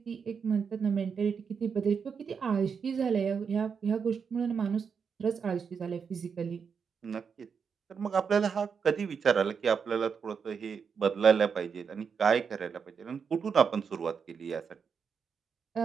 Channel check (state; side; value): quieter; left; 6.3 dB